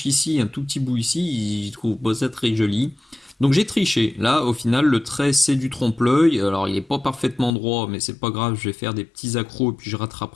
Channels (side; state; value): right; drops out; at 7.5 s